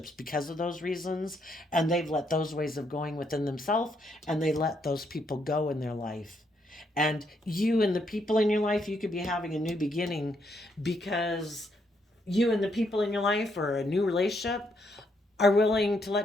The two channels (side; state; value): both; normal; correlation 0.75